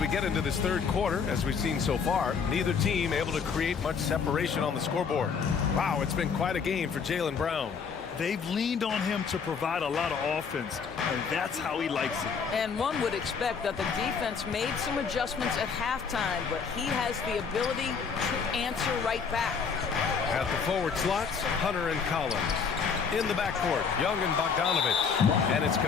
we get into this third quarter, as we've seen so far, neither team able to create much separation on the scoreboard. Wow, it's been quite a game for Jaylen Brown. They've leaned on him to provide a lot of offense, and that's how he likes it. And one would expect that the defense made some adjustments at halftime, but he has the ability to answer right back. At the forward slots, Hunter and Collins. In the backcourt, Young and Bogdanovich. And it's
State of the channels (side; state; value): right; quieter; 6.0 dB